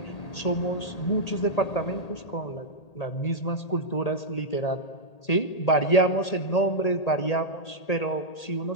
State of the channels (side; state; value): right; late; 1.8 ms